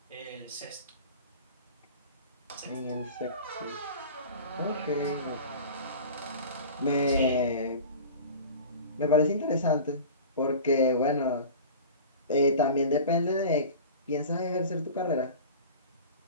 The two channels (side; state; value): both; inverted; correlation -0.37